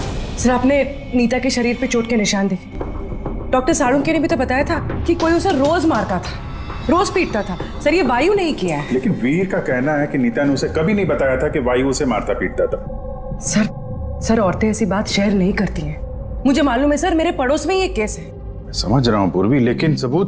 सर आपने नीता के शरीर पे चोट के निशान देखे। डॉक्टर साळुंके ने भी तो बताया था कि कोई उसे रोज मारता था, रोज पीटता था। सर ये वायु नहीं किया है। लेकिन वीर का कहना है कि नीता ने उसे कभी नहीं बताया था कि वायु उसे मारता पीटता था। सर औरतें ऐसी बात शेयर नहीं करती हैं। मुझे मालूम है सर, मेरे पड़ोस में ये केस है। मैं समझ रहा हूं पूर्वी, लेकिन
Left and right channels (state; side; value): identical; both; correlation 1.00